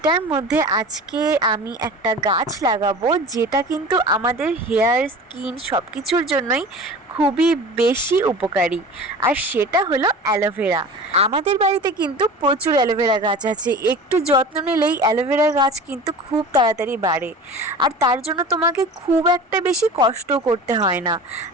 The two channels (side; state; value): both; normal; correlation 0.36